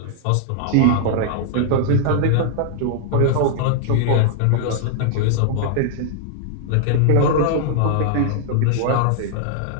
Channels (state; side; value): different; both; correlation -0.01